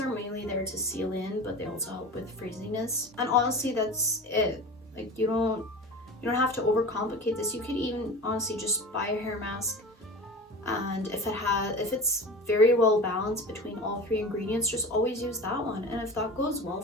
mainly there to seal in, but they also help with frizziness. And honestly, that's it. Like you don't have to overcomplicate this. You could even honestly just buy a hair mask, and if it's very well balanced between all 3 ingredients, just always use that one. And if that goes well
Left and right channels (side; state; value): both; normal; correlation 0.33